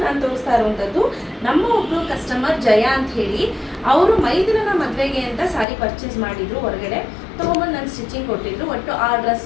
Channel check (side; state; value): right; drops out; at 5.7 s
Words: ನಾನು ತೋರಿಸ್ತಾ ಇರುವಂಥದ್ದು ನಮ್ಮ ಒಬ್ಬರು ಕಸ್ಟಮರ್ ಜಯ ಅಂತ ಹೇಳಿ. ಅವರು ಮೈದಿನ ಮದುವೆಗೆ ಅಂತ ಸ್ಯಾರಿ ಪರ್ಚೇಸ್ ಮಾಡಿದ್ರು, ಹೊರಗಡೆ ತೊಗೊಂಬಂದು ನಾನು ಸ್ಟಿಚಿಂಗ್ ಕೊಟ್ಟಿದ್ರು. ಒಟ್ಟು 6